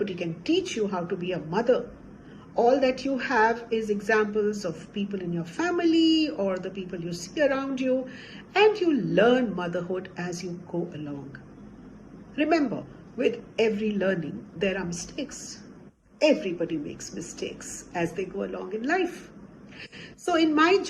can teach you how to be a mother. All that you have is examples of people in your family or the people you see around you, and you learn motherhood as you go along. Remember, with every learning, there are mistakes. Everybody makes mistakes as they go along in life. So in my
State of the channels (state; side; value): identical; both; correlation 1.00